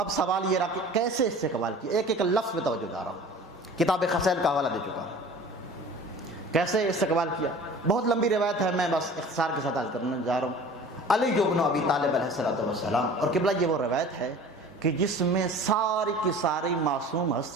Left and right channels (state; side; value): normal; both; correlation 0.43